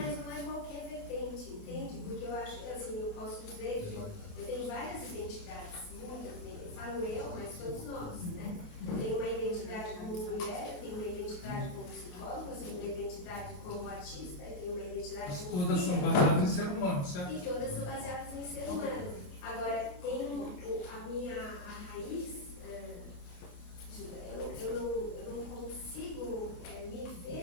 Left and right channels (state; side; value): late; right; 29 ms